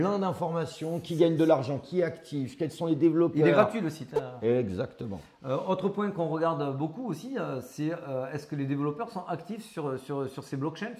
d'informations. Qui gagne de l'argent, qui est actif, quels sont les développeurs. Il est gratuit le site. Exactement. Autre point qu'on regarde beaucoup aussi, c'est est-ce que les développeurs sont actifs sur ces blockchains,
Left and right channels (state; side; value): identical; both; correlation 1.00